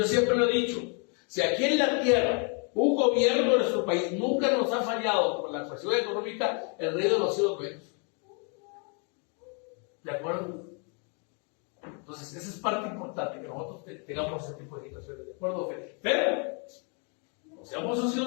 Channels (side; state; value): right; quieter; 37.5 dB